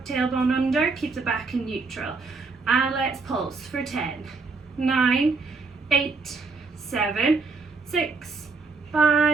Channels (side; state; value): left; quieter; 4.2 dB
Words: tailbone under, keep the back in neutral. And let's pulse for 10, 9, 8, 7, 6,